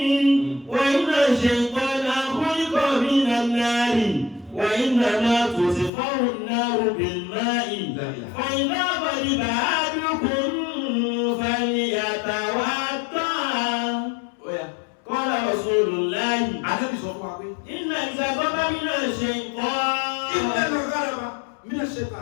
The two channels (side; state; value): right; drops out; at 5.9 s